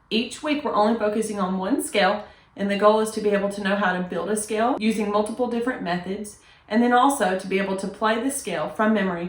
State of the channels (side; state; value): both; identical; correlation 1.00